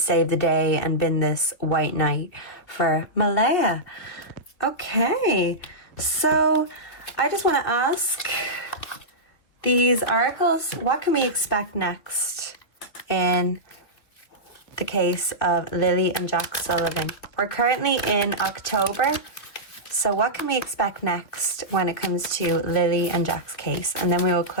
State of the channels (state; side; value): late; right; 2.6 ms